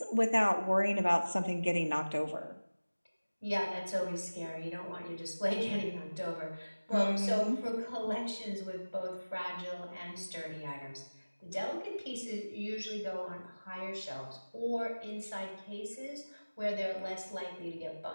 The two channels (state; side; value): inverted; both; correlation -1.00